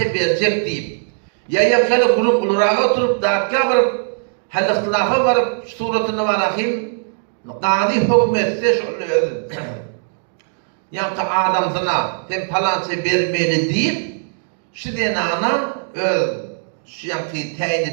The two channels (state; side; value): silent; left; digital silence